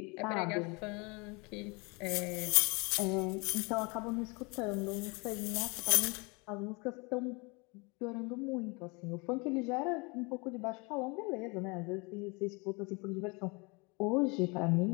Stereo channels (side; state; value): right; quieter; 29.1 dB